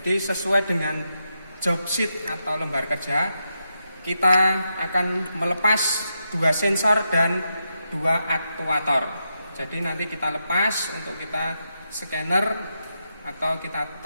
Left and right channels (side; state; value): both; inverted; correlation -0.85